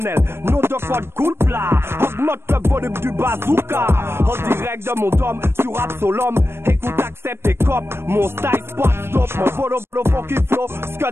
Nom de code cool plat. Augmente le volume du bazooka. En direct de mon dôme sur Absolum. Écoute, accepte et cop. Mon style spot stop. Mon volo funky flow.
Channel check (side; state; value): left; late; 0.12 ms